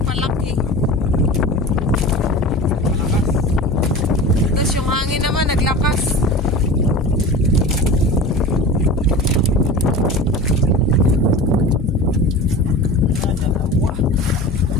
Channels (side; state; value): both; normal; correlation 0.34